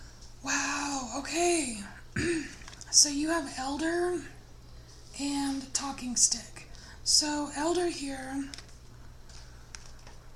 Wow. Okay. So you have Elder and Talking Stick. So Elder here,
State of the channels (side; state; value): both; identical; correlation 1.00